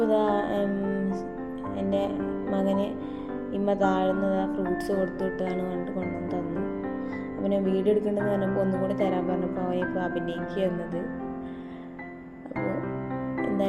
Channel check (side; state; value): both; identical; correlation 1.00